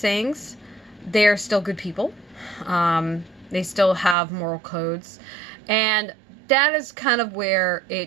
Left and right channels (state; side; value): drops out; left; at 4.2 s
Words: they're still good people. They still have moral codes, and that is kind of where